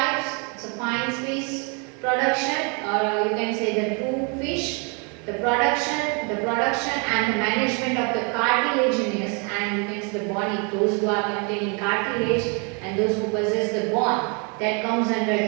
It's a fine fish production, or you can say the true fish. The production and the management of the cartilaginous and you can say the bony, those who are containing cartilage and those who possess the bone, that comes under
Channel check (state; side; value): quieter; left; 34.8 dB